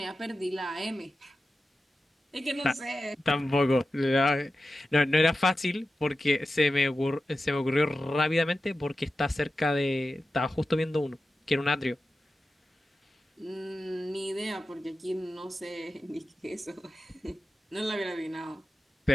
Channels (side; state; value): both; normal; correlation 0.93